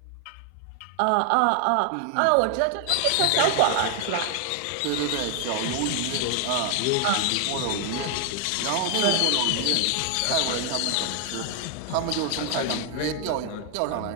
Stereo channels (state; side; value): different; both; correlation 0.00